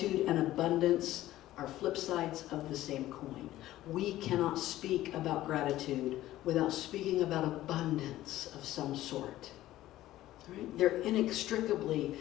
and abundance are flip sides of the same coin. We cannot speak about gratitude without speaking about abundance of some sort. Right? They're inextricably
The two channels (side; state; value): right; quieter; 14.9 dB